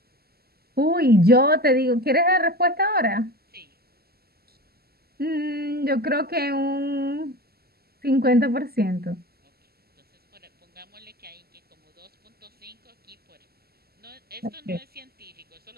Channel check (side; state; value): left; late; 0.46 ms